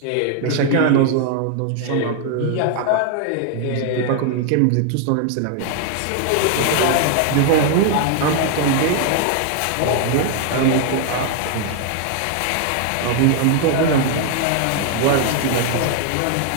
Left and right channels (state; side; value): different; both; correlation 0.00